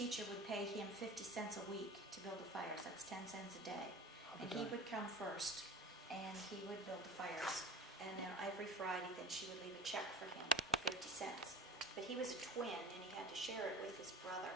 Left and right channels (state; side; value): normal; both; correlation 0.37